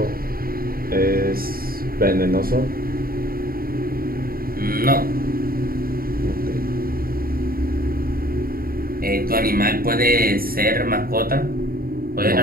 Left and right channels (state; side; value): late; left; 0.43 ms